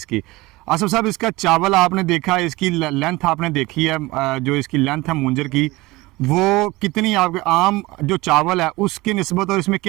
की। आसिफ साहब, इसका चावल आपने देखा, इसकी लेंथ आपने देखी है, जो इसकी लेंथ है मूंजर की, वो कितनी आपके आम जो चावल है उसकी निस्बत और इसमें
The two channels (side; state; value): left; quieter; 20.9 dB